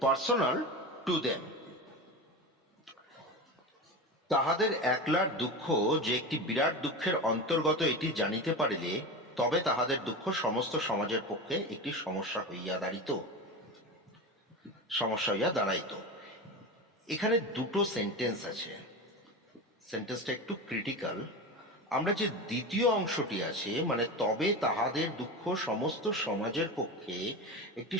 personal to them. তাহাদের একলার দুঃখ যে একটি বিরাট দুঃখের অন্তর্গত এটি জানিতে পারিলে তবে তাহাদের দুঃখ সমস্ত সমাজের পক্ষে একটি সমস্যা হইয়া দাঁড়াইত। এখানে দুটো সেন্টেন্স আছে, সেন্টেন্সটা একটু ক্রিটিক্যাল। আমরা যে দ্বিতীয় অংশটি আছে, মানে তবে তাহাদের দুঃখ সমস্ত সমাজের পক্ষে একটি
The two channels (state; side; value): normal; both; correlation 0.25